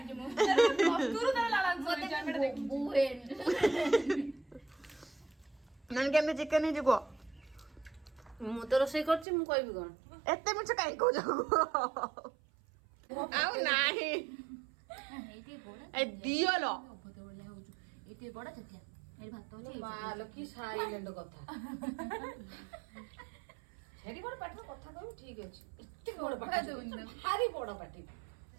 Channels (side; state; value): left; drops out; at 9.2 s